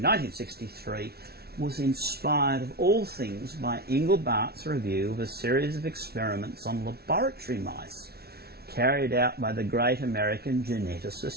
1963 was inspired of all things by Engelbart's review of a series of experiments on laboratory mice carried out by the great American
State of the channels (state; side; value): late; left; 0.45 ms